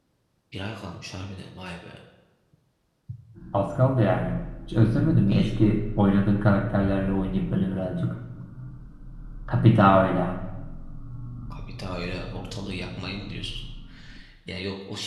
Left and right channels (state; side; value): identical; both; correlation 1.00